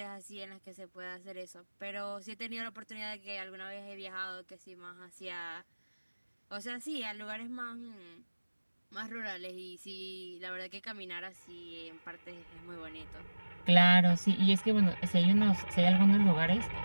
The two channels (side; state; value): both; inverted; correlation -1.00